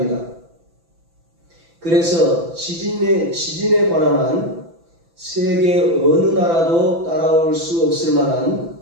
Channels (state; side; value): late; left; 6.0 ms